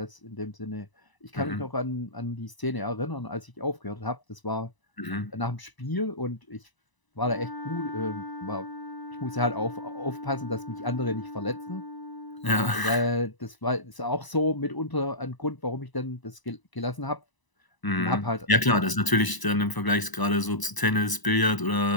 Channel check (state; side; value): late; right; 1.0 ms